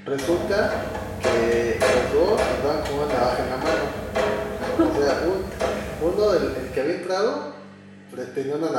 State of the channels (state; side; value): identical; both; correlation 1.00